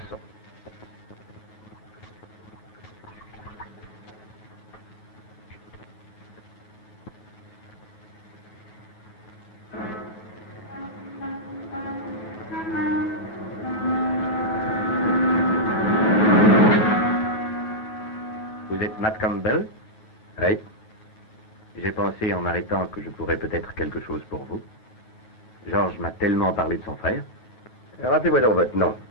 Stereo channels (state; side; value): late; right; 9.2 ms